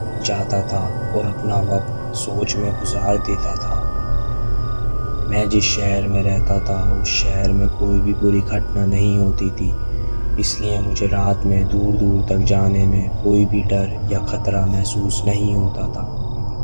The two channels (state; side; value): inverted; both; correlation -1.00